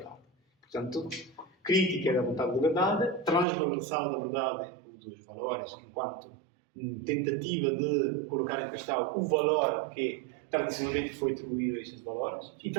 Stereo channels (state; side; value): drops out; left; at 3.5 s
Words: Portanto, crítica da vontade da verdade, transvalorização da verdade dos valores enquanto tentativa de colocar em questão o valor que tradicionalmente foi atribuído a estes valores e